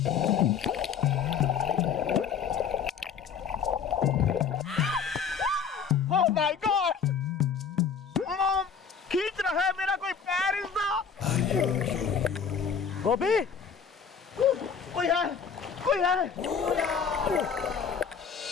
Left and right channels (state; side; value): quieter; right; 6.6 dB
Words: Oh my God, mom खींच रहा है मेरा कोई पैर। गोपी, कोई है, कोई है।